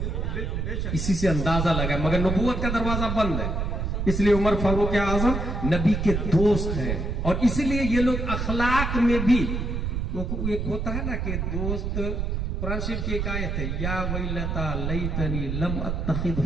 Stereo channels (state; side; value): noise; right; rumble, 1 dB below the sound